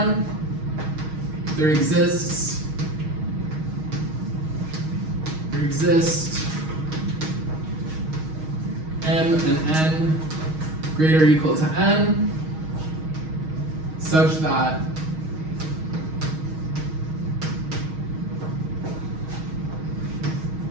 there exists m and n greater or equal to n such that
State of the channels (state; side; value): late; left; 6.4 ms